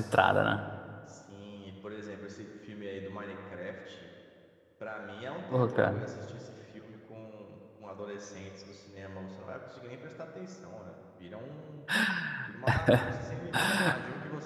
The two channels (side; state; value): both; identical; correlation 1.00